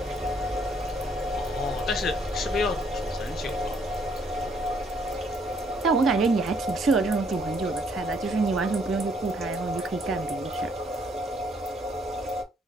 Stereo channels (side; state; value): both; normal; correlation 0.67